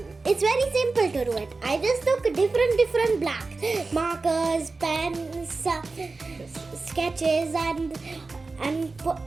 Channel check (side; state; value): left; quieter; 3.8 dB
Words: it's very simple to do it. I just took different blacks, markers, pens, sketches, and